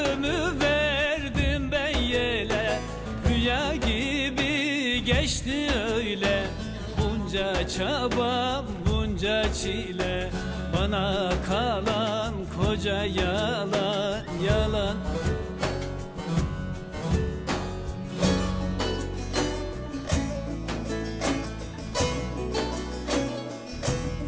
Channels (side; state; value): both; identical; correlation 1.00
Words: verdim ben yele, rüya gibi geçti öyle. Bunca çaba, bunca çile, bana kalan koca yalan, yalan.